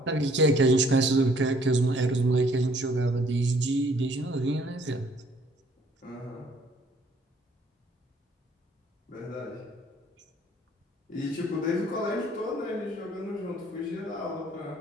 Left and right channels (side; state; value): both; normal; correlation 0.61